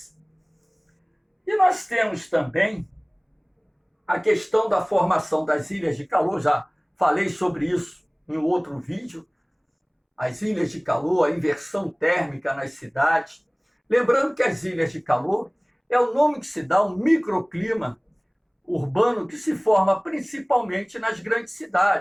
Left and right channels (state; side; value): identical; both; correlation 1.00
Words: E nós temos também a questão da formação das ilhas de calor, já falei sobre isso em outro vídeo, as ilhas de calor, a inversão térmica nas cidades. Lembrando que as ilhas de calor é o nome que se dá ao microclima urbano que se forma principalmente nas grandes